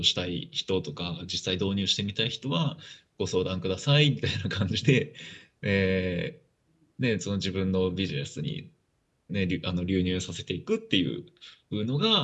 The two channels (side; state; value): both; identical; correlation 1.00